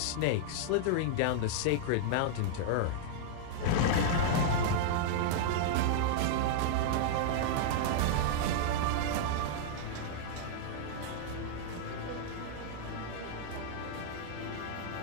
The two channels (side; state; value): both; different; correlation -0.01